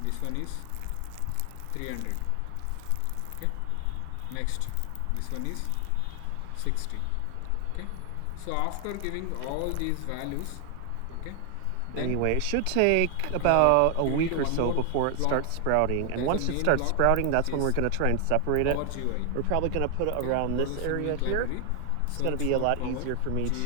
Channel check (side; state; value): both; different; correlation 0.00